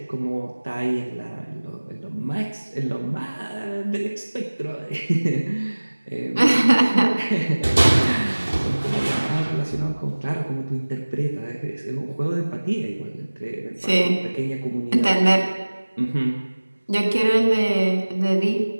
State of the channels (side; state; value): both; inverted; correlation -1.00